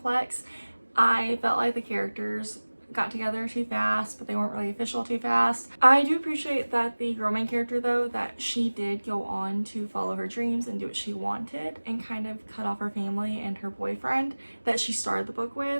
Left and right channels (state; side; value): inverted; both; correlation -1.00